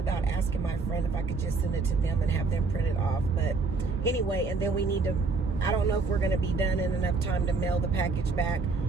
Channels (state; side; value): quieter; left; 4.2 dB